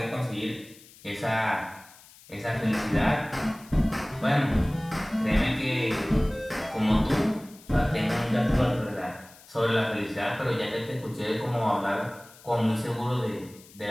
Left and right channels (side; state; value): left; noise; hiss, 23 dB below the sound